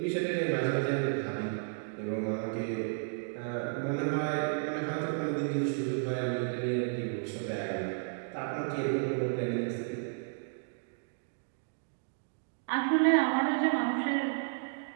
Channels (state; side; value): silent; left; digital silence